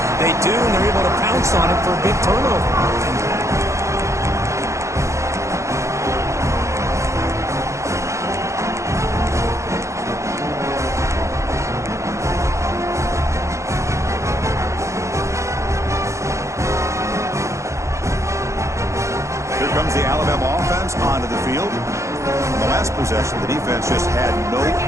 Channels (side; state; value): left; late; 0.14 ms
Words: They do, and they're able to pounce on it for a big turnover. The Alabama offense onto the field. In the last possession, the defense just had no